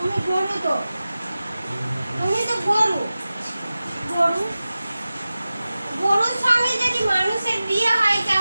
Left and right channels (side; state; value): both; inverted; correlation -0.95